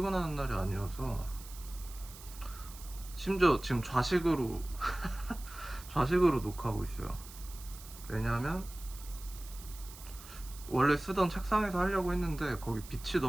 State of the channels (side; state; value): right; noise; hiss, 16 dB below the sound